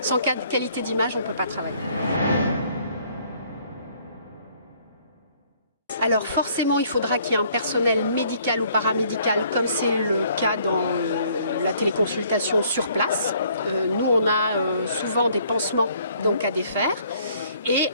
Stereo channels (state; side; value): inverted; both; correlation -0.62